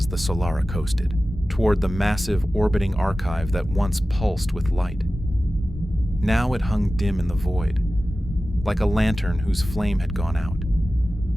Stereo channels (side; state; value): both; normal; correlation 0.95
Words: the Solara coasted toward the massive orbiting archive that once pulsed with light. Now it hung dim in the void, like a lantern whose flame had gone out.